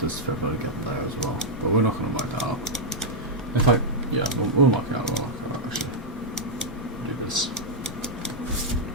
this fair value gap there as well. But we're not going to mark that out. In fact, yeah, we'll mark it out. We'll mark it out actually. Do this.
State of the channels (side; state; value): both; normal; correlation -0.05